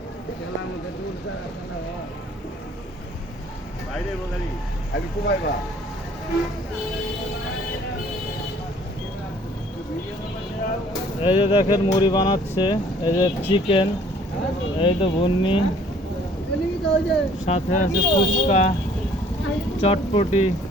খেলার মধ্যে ঢুলছে বাইরে বগারি আমি কুমাইবা। এই যে দেখেন মুড়ি বানাচ্ছে, এই যে চিকেন, এই তো ভুন্নি, সাথে আছে ফুচকা, চটপটি।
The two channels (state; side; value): normal; both; correlation 0.57